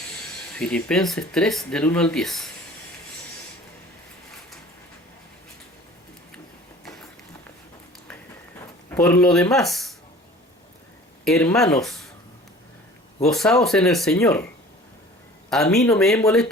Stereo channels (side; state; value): both; normal; correlation 0.45